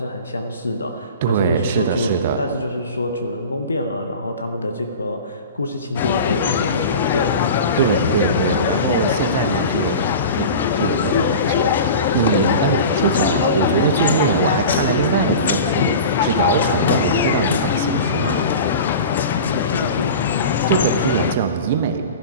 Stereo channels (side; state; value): both; inverted; correlation -0.33